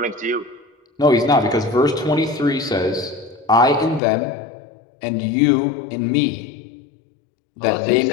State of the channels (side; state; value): right; drops out; at 4.0 s